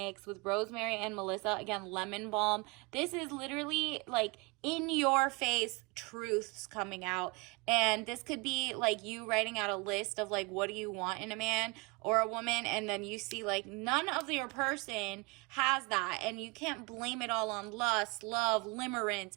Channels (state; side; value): quieter; left; 27.6 dB